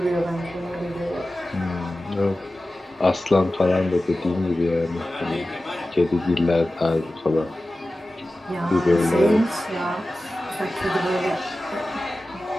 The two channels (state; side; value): normal; both; correlation 0.95